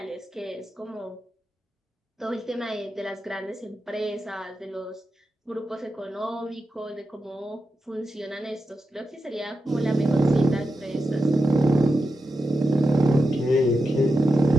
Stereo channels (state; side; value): normal; both; correlation 0.89